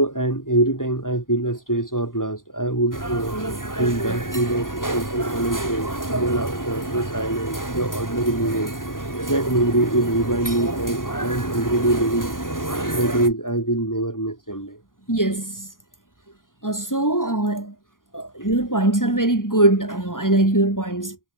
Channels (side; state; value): right; late; 0.90 ms